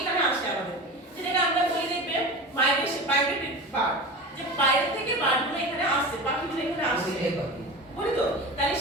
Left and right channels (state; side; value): normal; both; correlation 0.30